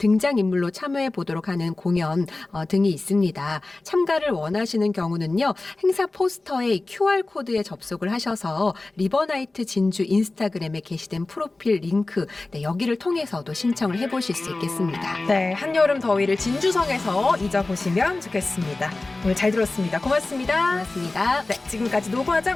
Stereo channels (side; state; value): right; quieter; 3.2 dB